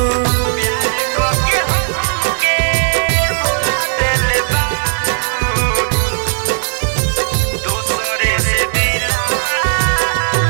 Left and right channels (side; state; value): left; silent; 64 dB below the other